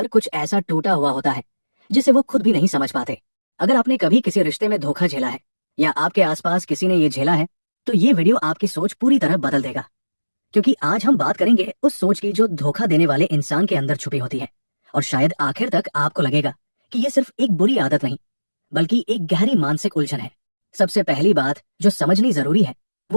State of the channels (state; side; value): inverted; both; correlation -1.00